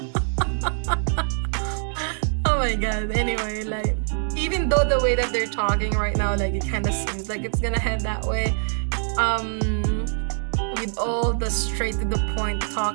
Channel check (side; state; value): left; silent; 61 dB below the other